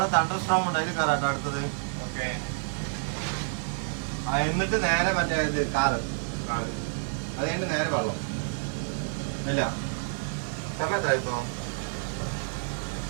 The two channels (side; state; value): left; silent; 59 dB below the other